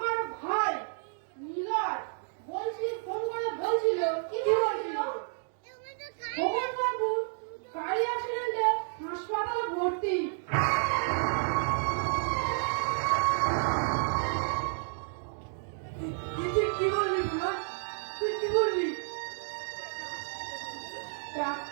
ভাই নীলয় ফোন করে বলছিল কি বলছিল, ভগবান বাবু গাড়ি অ্যাক্সিডেন্টে হাসপাতালে ভর্তি। তুই কি বললি বুড়া? তুই কি বললি?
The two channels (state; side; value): silent; left; digital silence